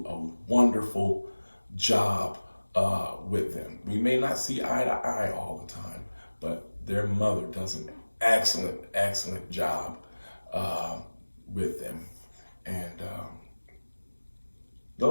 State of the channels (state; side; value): inverted; both; correlation -1.00